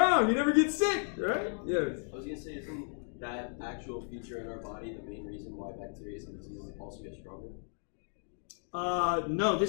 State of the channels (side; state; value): right; silent; 55 dB below the other